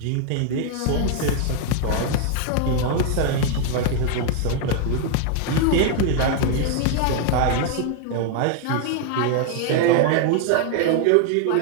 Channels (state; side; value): different; both; correlation 0.00